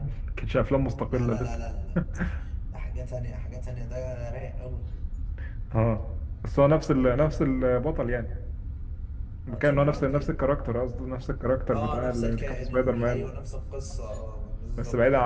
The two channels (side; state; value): both; identical; correlation 1.00